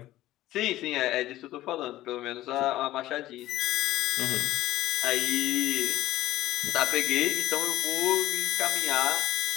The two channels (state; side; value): quieter; right; 15.4 dB